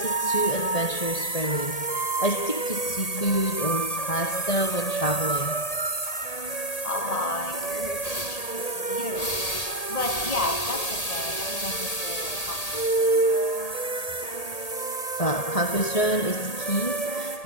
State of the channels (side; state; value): right; late; 1.8 ms